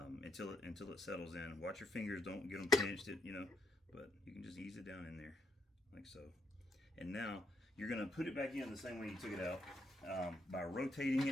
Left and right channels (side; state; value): both; normal; correlation 0.75